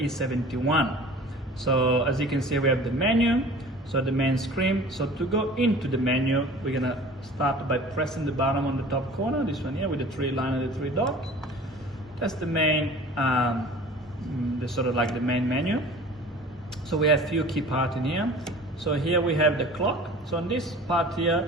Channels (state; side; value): normal; both; correlation 0.43